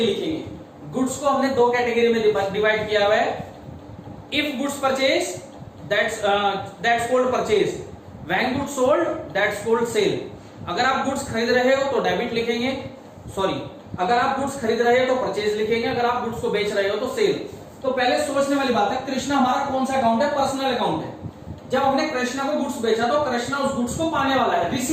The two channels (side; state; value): both; identical; correlation 1.00